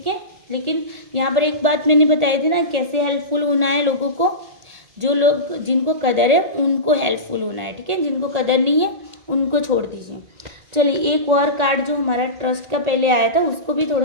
है, लेकिन यहाँ पर एक बात मैंने बताई थी ना, कैसे हेल्पफुल होना है लोगों को, जो लोग जिनको कदर है उनको हेल्पफुल होना है। ठीक है, जिनको कदर नहीं है उनको छोड़ दीजिए। चलिए एक और कार्ड जो हमारा ट्रस्ट का पहले आया था उसको भी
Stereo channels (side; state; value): left; late; 1.8 ms